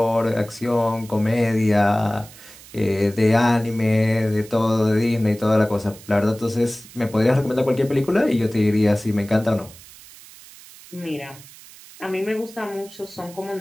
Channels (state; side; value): noise; right; hiss, 20 dB below the sound